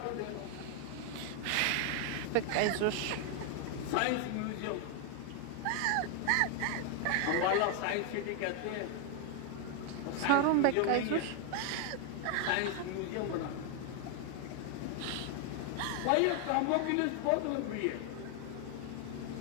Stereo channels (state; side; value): different; both; correlation 0.00